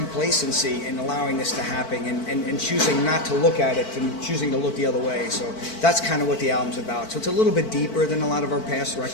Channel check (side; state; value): right; late; 4.5 ms